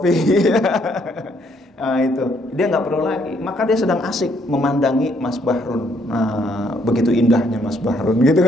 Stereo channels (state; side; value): normal; both; correlation 0.69